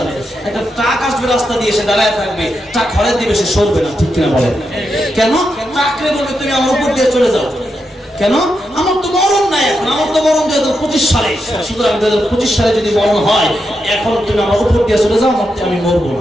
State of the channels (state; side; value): normal; both; correlation 0.85